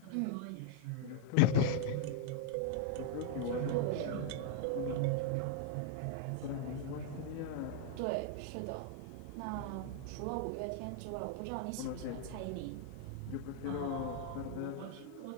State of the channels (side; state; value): both; different; correlation -0.01